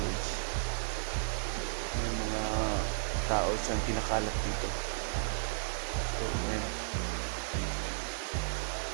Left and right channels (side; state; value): left; silent; digital silence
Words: May mga tao siyang kinakalat dito. So ayan,